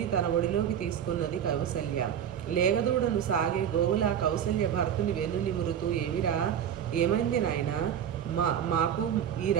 తన ఒడిలోకి తీసుకున్నది కౌసల్య. లేగదూడను సాగే గోవులా కౌసల్య భరతుని వెన్ను నిమురుతూ, ఏమిరా, ఏమైంది నాయనా, మాకు ఈ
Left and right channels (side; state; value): left; quieter; 9.2 dB